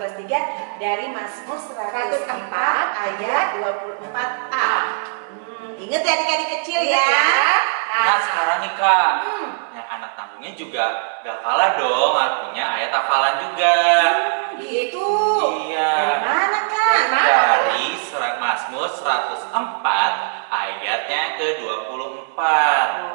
3 dari Mazmur 104 ayat 24a. Ingat ya adik-adik kecil ya. Nah sekarang nih Kak, yang anak tanggungnya juga gak kalah dong artinya ayat hafalan juga. Gitu. Iya. Dari mana Kak? Dari mana? Dari surat Mazmur 104 ayatnya ke-24.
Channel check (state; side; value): silent; left; digital silence